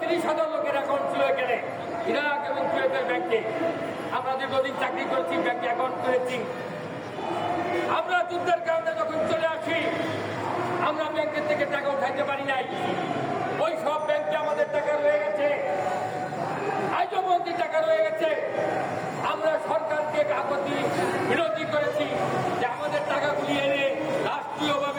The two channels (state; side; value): identical; both; correlation 1.00